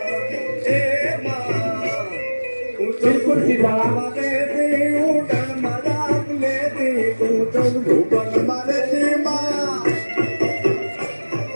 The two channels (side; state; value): both; inverted; correlation -1.00